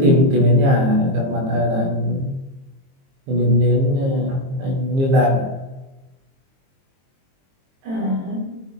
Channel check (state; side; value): late; left; 22 ms